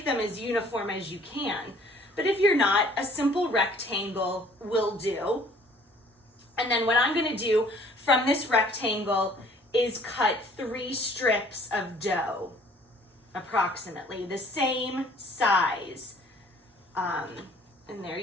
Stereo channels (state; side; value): normal; both; correlation 0.56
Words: them as uniform as you can. But if you're not, a simple rectangle will do. And then what I'm going to do from this rectangle is cut 3 strips of dough, approximately the same size. And there